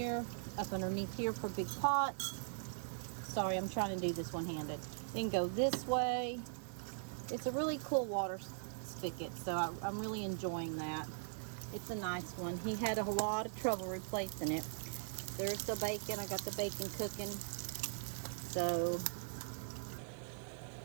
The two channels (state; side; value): silent; left; 51 dB below the other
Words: for big pots. Sorry, I'm trying to do this one-handed. Then go this way. It's a really cool water spigot, so I'm really enjoying that. It's a nice one. He had a lot of trouble replacing it. There's the bacon. I got the bacon cooking. So,